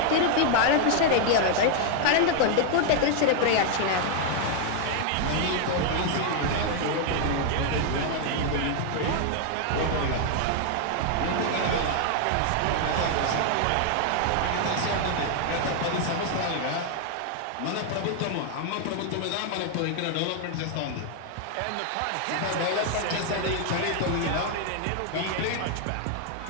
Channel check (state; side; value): different; both; correlation 0.00